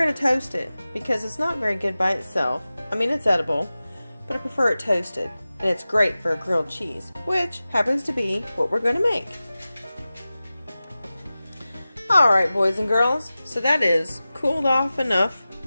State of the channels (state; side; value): inverted; both; correlation -0.96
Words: to toast it because it's not very good by itself. I mean, it's edible, but I prefer it toasted. And it's great for a grilled cheese, which happens to be what we're going to make. Alright, boys and girls, so that is cooled off enough